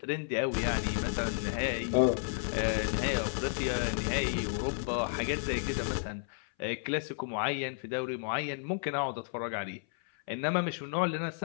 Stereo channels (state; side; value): silent; right; 56 dB below the other